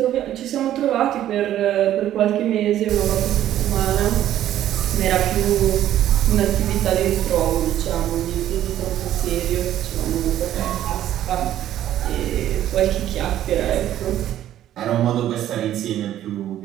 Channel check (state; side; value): quieter; left; 12.1 dB